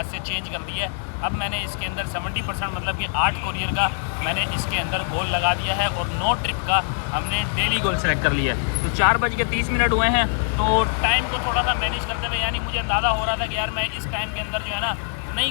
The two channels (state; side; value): silent; right; digital silence